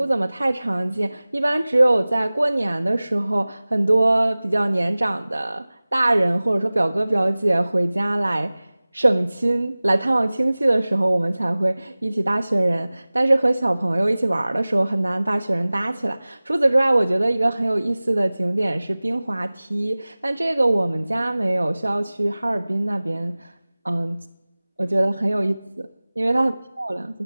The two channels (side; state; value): both; inverted; correlation -0.99